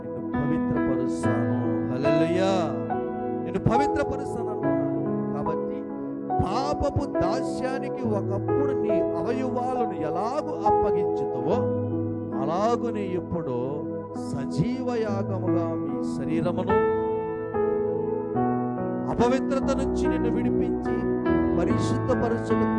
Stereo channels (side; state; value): both; identical; correlation 1.00